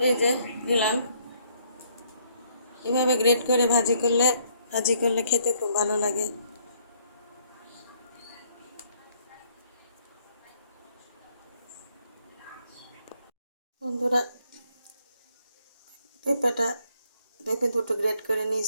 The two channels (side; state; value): both; inverted; correlation -0.66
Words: এই যে দিলাম। এভাবে গ্রেট করে ভাজি করলে খেতে খুব ভালো লাগে। বন্ধুরা, পেঁপে দুটো গ্রেট করে